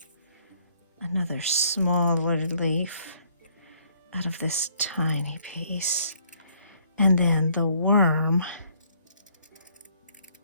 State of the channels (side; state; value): both; inverted; correlation -0.65